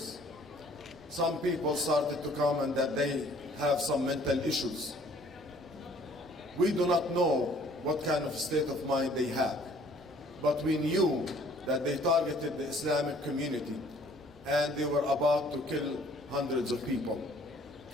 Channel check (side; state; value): both; normal; correlation 0.57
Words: Some people started to comment that they have some mental issues. We do not know what kind of state of mind they have, but we knew that they targeted the Islamic community and they were about to kill hundreds of people.